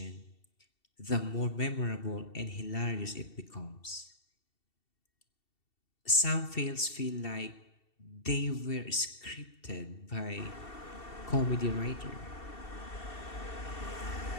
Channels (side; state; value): right; late; 2.7 ms